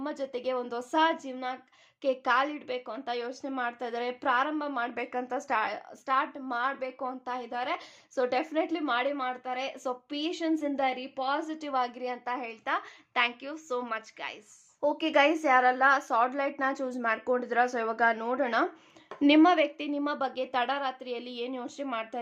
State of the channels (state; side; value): identical; both; correlation 1.00